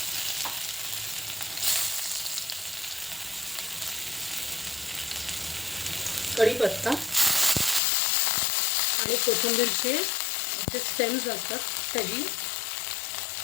कढीपत्ता आणि कोथिंबीरचे जे स्टेम्स असतात त्याची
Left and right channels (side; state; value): right; drops out; at 7.8 s